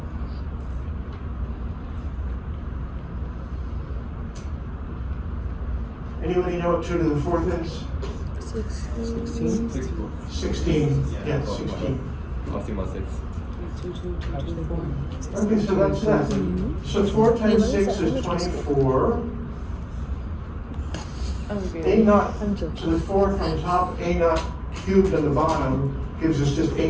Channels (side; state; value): both; identical; correlation 1.00